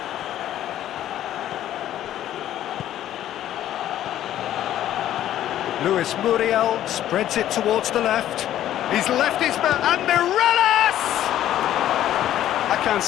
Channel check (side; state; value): right; quieter; 12.2 dB